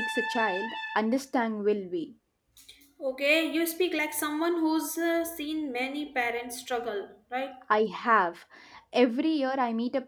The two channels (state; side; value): identical; both; correlation 1.00